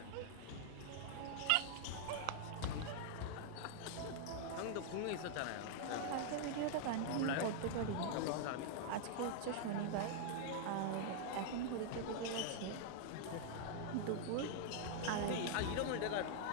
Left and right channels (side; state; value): both; different; correlation 0.00